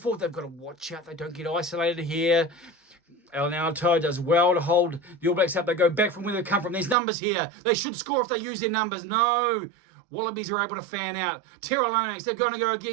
They've got to watch out. They don't get isolated here. Alan Alatoa does well to hold the All Blacks up. They go back from where they come from. There's numbers here. They should score if they use their numbers. No. Wallabies are able to fan out. Tyrell Lomax, they're going to go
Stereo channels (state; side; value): drops out; left; at 7.0 s